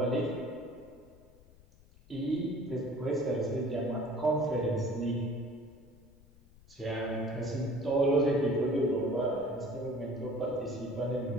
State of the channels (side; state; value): left; noise; rumble, 25 dB below the sound